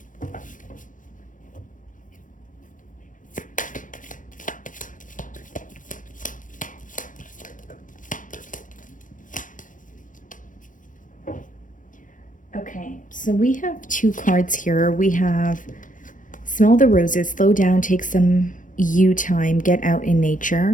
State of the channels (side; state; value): right; late; 0.38 ms